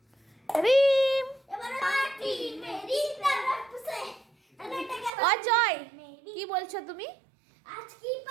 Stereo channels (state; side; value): drops out; left; at 5.1 s